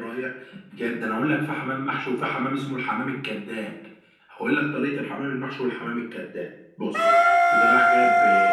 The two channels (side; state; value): both; identical; correlation 1.00